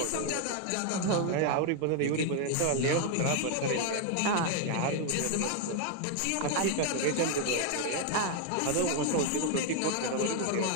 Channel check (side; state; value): both; different; correlation 0.01